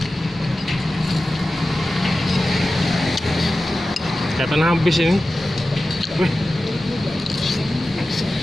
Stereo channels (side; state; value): both; normal; correlation 0.94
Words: Kelihatan habis ini. Wih.